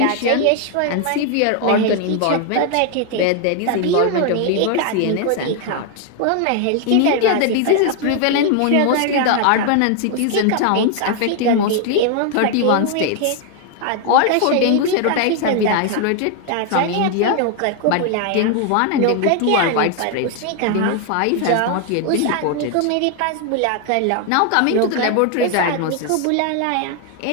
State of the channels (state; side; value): different; both; correlation 0.00